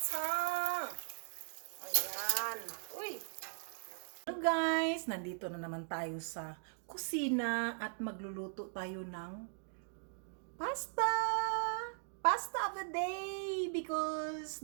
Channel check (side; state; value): left; silent; digital silence